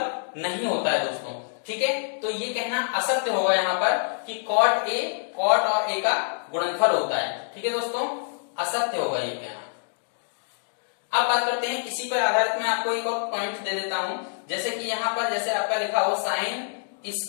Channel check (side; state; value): right; silent; digital silence